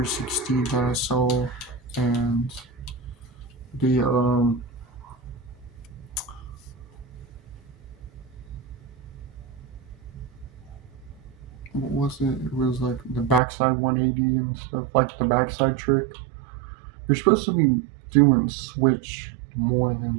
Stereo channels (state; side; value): drops out; left; at 13.4 s